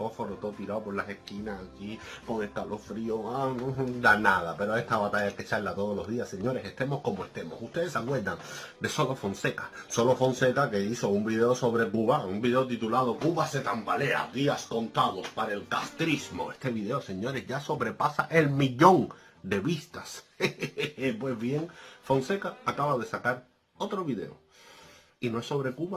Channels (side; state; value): both; identical; correlation 1.00